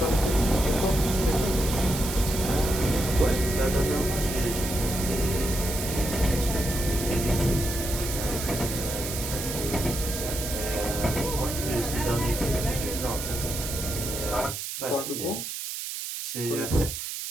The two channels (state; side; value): noise; right; hiss, 6 dB below the sound